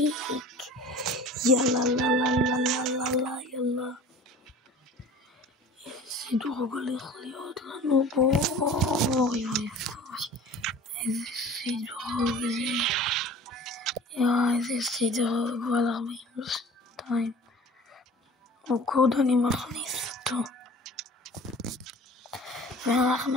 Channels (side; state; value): both; normal; correlation 0.43